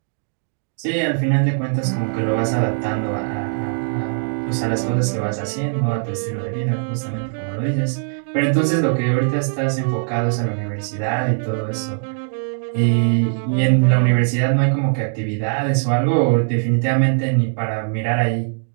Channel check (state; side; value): silent; left; digital silence